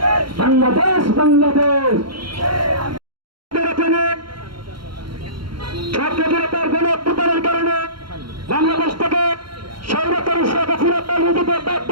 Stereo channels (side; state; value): left; late; 0.73 ms